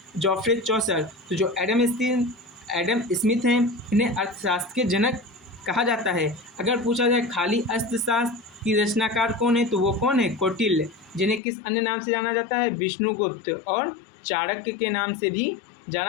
चौसर। तो जो एडम स्मिथ हैं इन्हें अर्थशास्त्र के जनक कहा जाता है। अगर पूछा जाए खाली अर्थशास्त्र की रचनाकार कौन है तो वो कौन है? कौटिल्य, जिन्हें किस अन्य नाम से जाना जाता है? विष्णुगुप्त और चाणक्य के नाम से भी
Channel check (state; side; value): drops out; right; at 11.4 s